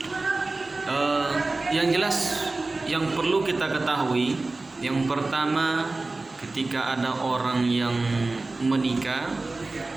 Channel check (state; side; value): quieter; left; 3.3 dB